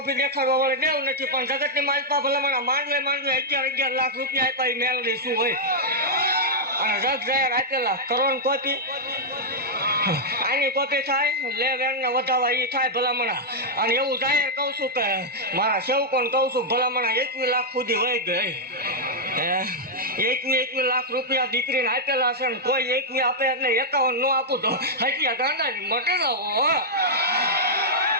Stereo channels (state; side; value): normal; both; correlation -0.06